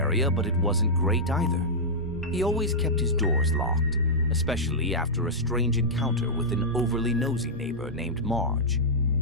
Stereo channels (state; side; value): normal; both; correlation -0.10